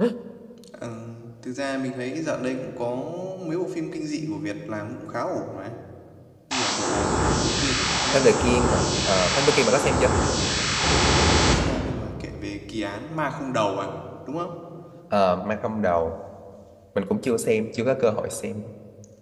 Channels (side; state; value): both; identical; correlation 1.00